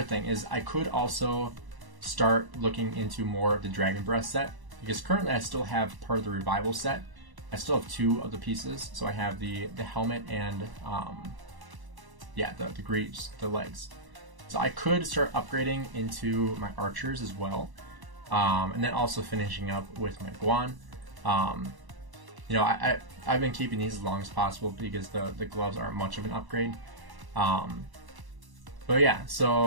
thing, is I could also start looking into more of the Dragon Breath set, because currently I still have part of the Revival set. I still have 2 of the pieces, so I have the helmet and the greaves, the legs. So I could start upgrading into my archers as well, and then also finishing up with my Guan. I've been keeping these as long as possible because the gloves aren't much of an upgrade. But yeah,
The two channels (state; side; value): late; left; 1.0 ms